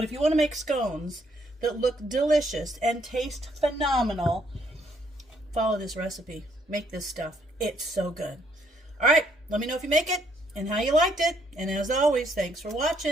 if you want to make scones that look delicious and taste phenomenal, follow this recipe. Make this stuff. It's so good. All right, let me know if you make it and how you liked it. And as always, thanks for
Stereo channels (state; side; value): normal; both; correlation 0.69